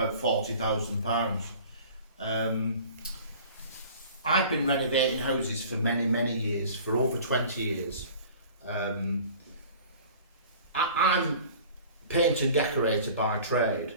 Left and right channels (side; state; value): both; inverted; correlation -0.45